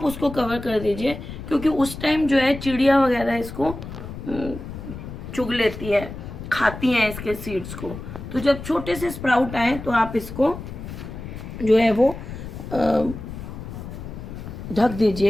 उसको कवर कर दीजिए, क्योंकि उस टाइम जो है चिड़िया वगैरह इसको चुग लेती है, खाती हैं इसके सीड्स को। तो जब छोटे से स्प्राउट आए तो आप इसको जो है वो ढक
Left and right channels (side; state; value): left; noise; rumble, 10 dB below the sound